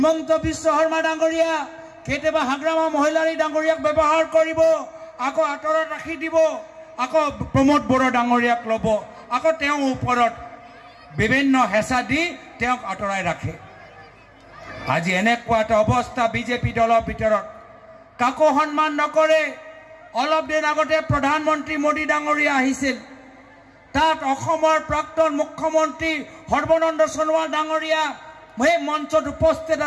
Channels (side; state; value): both; identical; correlation 1.00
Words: বিশ্ব শৰ্মা ডাঙৰীয়া কেতিয়াবা হাগ্ৰামা মহিলাৰী ডাঙৰীয়াক ব্যৱহাৰ কৰিব আকৌ আঁতৰত ৰাখি দিব আকৌ প্ৰমোদ বড়ো ডাঙৰীয়াক ল'ব আকৌ তেওঁৰ ওপৰত বিভিন্ন হেঁচা দি তেওঁক আঁতৰাই ৰাখে আজি এনেকুৱা এটা অৱস্থা বিজেপি দলৰ ভিতৰত কাকো সন্মান নকৰে অলপ দিন আগতে প্ৰধানমন্ত্ৰী মোদী ডাঙৰীয়া আহিছিল তাত অসমৰ প্ৰাক্তন মুখ্যমন্ত্ৰী সৰ্বানন্দ সোণোৱাল ডাঙৰীয়া সেই মঞ্চত উপস্থিত